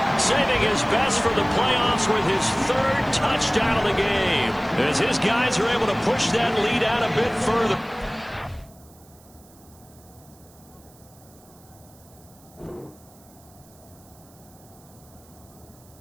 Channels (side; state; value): right; noise; hiss, 26 dB below the sound